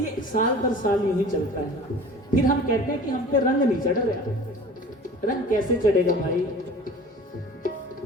ये साल दर साल यूं ही चलता है। फिर हम कहते हैं कि हम पे रंग नहीं चढ़ रहा। रंग कैसे चढ़ेगा भाई?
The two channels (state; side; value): normal; both; correlation 0.43